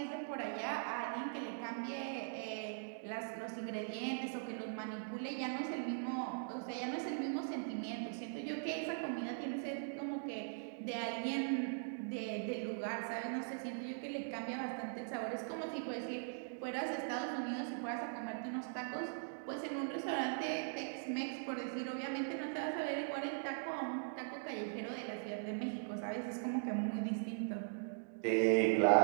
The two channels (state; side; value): silent; left; digital silence